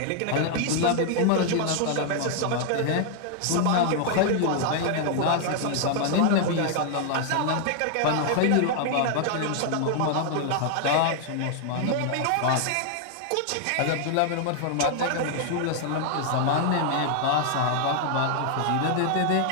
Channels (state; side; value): different; both; correlation 0.00